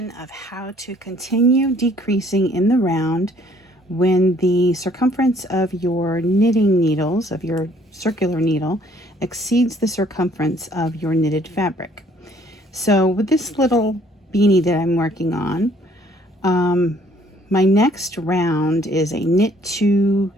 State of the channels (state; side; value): normal; both; correlation 0.61